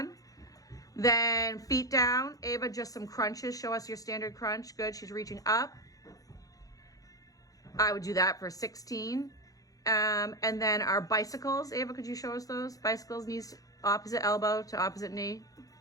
Then feet down. Ava, just some crunches. Show us your standard crunch. Good, she's reaching up. I would do that for 16. And then our bicycles. Ava, could you show us those? Bicycles, knees opposite elbow to opposite knee.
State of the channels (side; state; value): right; late; 0.17 ms